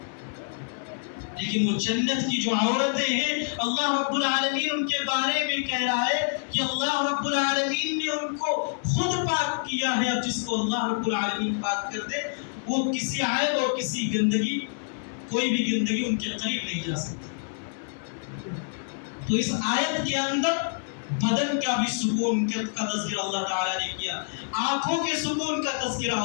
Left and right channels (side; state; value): right; silent; 60 dB below the other